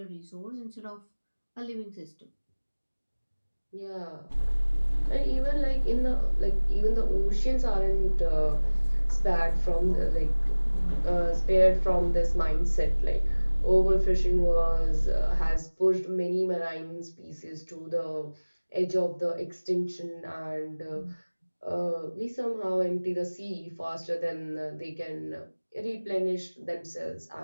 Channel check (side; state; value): both; inverted; correlation -1.00